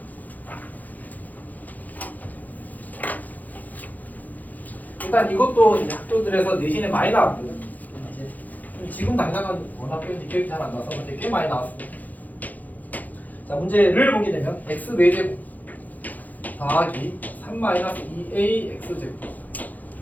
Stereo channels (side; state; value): right; late; 0.081 ms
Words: 일단 이것도 이제 학교들에서 내신에 많이 나왔고, 이제 지금 당장은 워낙 기억이 잘 안 나서 근데 꽤 많이 나왔습니다. 자, 문제를 보게 되면 x 4제곱 더하기 3-2a x제곱